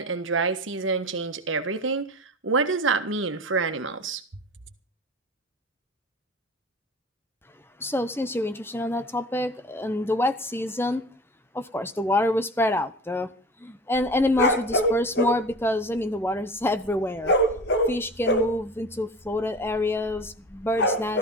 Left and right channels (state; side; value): normal; both; correlation 0.35